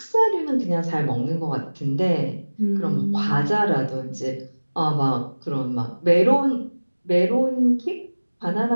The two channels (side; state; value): both; inverted; correlation -1.00